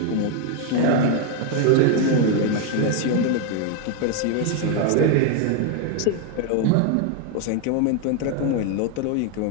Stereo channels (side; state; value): both; different; correlation 0.01